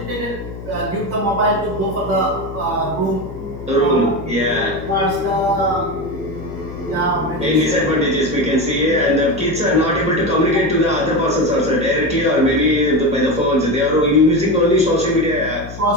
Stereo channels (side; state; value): left; noise; hum, 12 dB below the sound